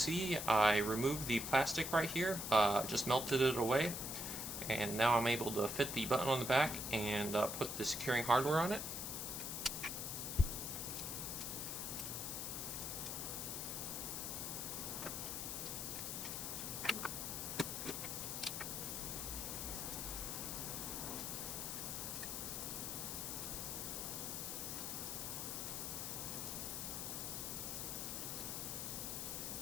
I removed the plastic right here, just melted it away, and now I'm able to fit the button on the back and put the securing hardware on it.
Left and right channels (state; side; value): noise; left; hiss, 3 dB below the sound